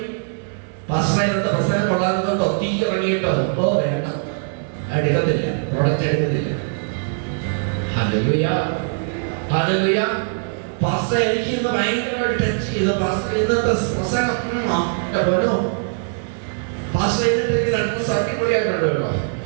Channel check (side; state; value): left; silent; 62 dB below the other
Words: പ്രസംഗം കൊള്ളാനോ തീ ഇറങ്ങിയിട്ടോ വേണ്ട, എടുക്കത്തില്ല, പ്രൊഡക്റ്റ് എടുക്കത്തില്ല. Hallelujah, hallelujah. പാസ്റ്റർ എനിക്ക് ഇന്ന് ഭയങ്കരമായിട്ട് ടച്ച് ചെയ്തു. പാസ്റ്റർ ഇന്നത്തെ പ്രസംഗം പോലോ പാസ്റ്റർ എന്നിട്ട് രണ്ട് അടിപൊളിയായിട്ടുണ്ട് കേട്ടോ.